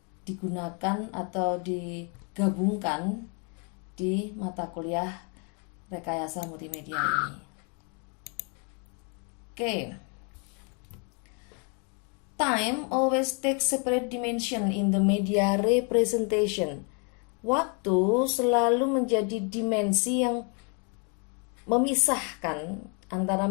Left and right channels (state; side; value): quieter; right; 37.2 dB